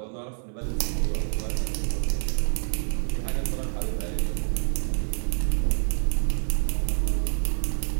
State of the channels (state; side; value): silent; left; 60 dB below the other